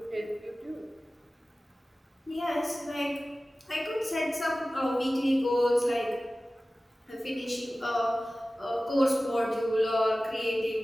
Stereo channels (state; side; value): normal; both; correlation 0.96